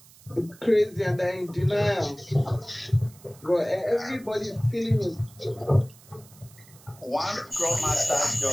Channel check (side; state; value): right; noise; hiss, 24 dB below the sound